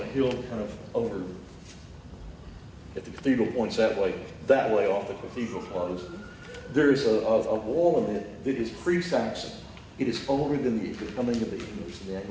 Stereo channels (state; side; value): identical; both; correlation 1.00